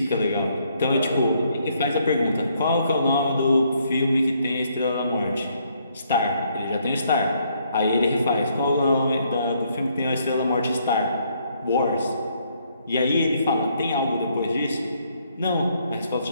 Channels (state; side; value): inverted; both; correlation -0.71